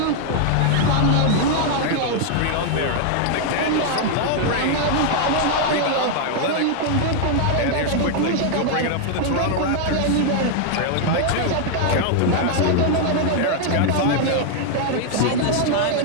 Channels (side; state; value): both; different; correlation 0.00